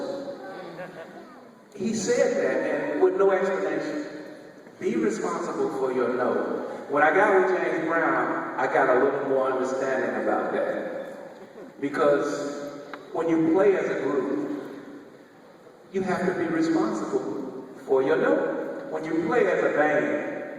He said that, and with no explanation. Be responsible for your note. When I got with James Brown, I got a little more understanding about that. Because when you play as a group, you have to be responsible for your note. When you play as a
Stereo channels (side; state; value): both; identical; correlation 1.00